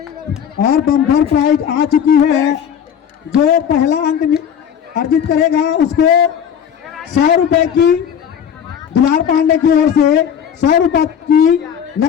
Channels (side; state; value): right; quieter; 8.3 dB